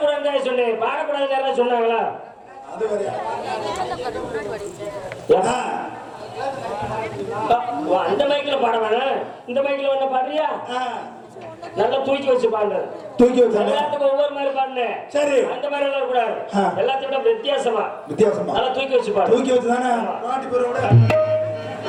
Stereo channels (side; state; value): both; identical; correlation 1.00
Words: சொன்னேன் பாடக்கூடாதுன்னு யாராவது சொன்னாங்களா அது வரையா அந்த மைக்ல பாட வேணாம் இந்த மைக்ல வேணா பாடுறியா நல்லா தூக்கி வச்சு பாடு தூக்கி வச்சானே எல்லாத்துக்கும் ஒவ்வொரு மாதிரி பாடுனே சரி அந்த மாதிரி எல்லாம் கூடாது எல்லாத்தையும் விட வித்தியாசமா நல்லா தூக்கி வச்சு பாடு தூக்கி வச்சு தானே பாட்டி பேரோட